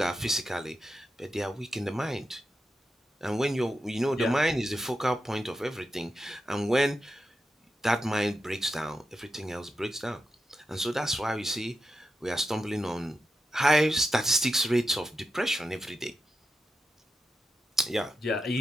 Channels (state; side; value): normal; both; correlation 0.88